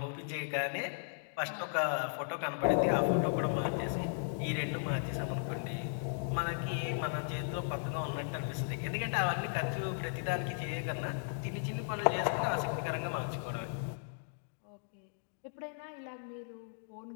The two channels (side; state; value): right; silent; digital silence